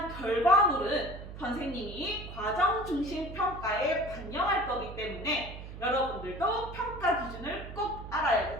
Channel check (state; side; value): noise; right; hum, 11 dB below the sound